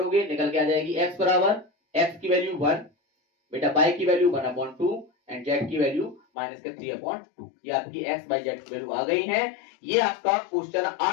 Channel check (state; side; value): drops out; right; at 6.2 s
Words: निकल के आ जाएगी एक्स बराबर एक्स की वैल्यू 1, बेटा वाई की वैल्यू 1/2 एंड जेड की वैल्यू माइनस के 3/2। ये आपकी एक्स वाई जेड की वैल्यू आ गई है। ये आपका क्वेश्चन